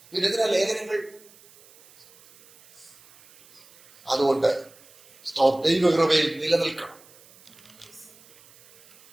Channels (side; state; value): right; noise; hiss, 26 dB below the sound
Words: പിന്നെ എന്തിനാ ലേഖനങ്ങൾ? അതുകൊണ്ട് ദൈവകൃപയിൽ നിലനിൽക്കണം.